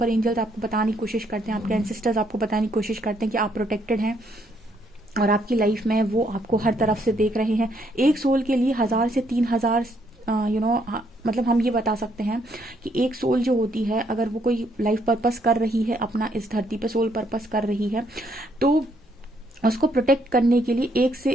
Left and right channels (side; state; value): both; normal; correlation 0.71